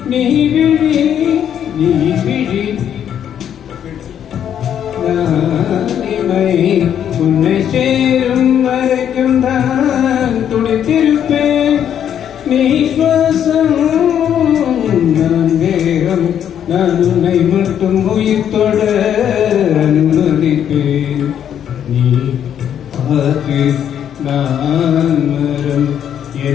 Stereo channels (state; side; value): quieter; right; 9.4 dB